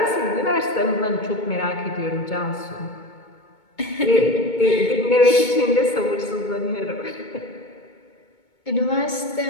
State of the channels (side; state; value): right; late; 2.2 ms